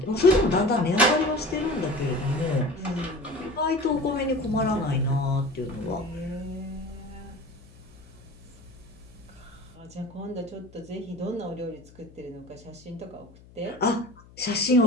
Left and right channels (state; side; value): noise; left; hum, 23 dB below the sound